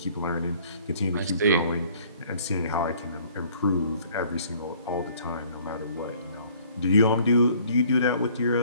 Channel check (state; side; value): inverted; both; correlation -0.57